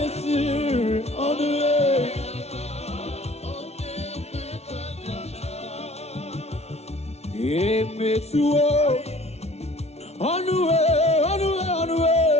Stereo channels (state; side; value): late; right; 0.31 ms